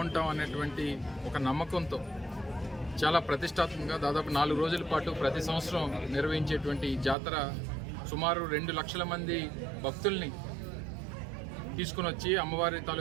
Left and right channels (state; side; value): drops out; left; at 7.2 s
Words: అనేటువంటి ఒక నమ్మకంతో చాలా ప్రతిష్టాత్మకంగా దాదాపు 4 రోజుల పాటు ప్రతి సంవత్సరం నిర్వహించేటువంటి ఈ జాతర సుమారు 2 లక్షల మంది భక్తుల్ని తీసుకుని వచ్చి అమ్మవారి